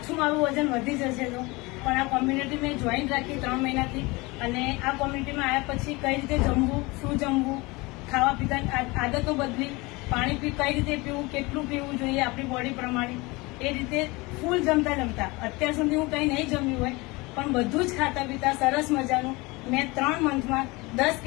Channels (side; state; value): right; quieter; 24.1 dB